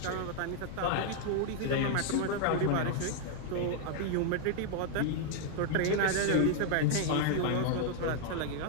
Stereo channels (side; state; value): both; different; correlation 0.00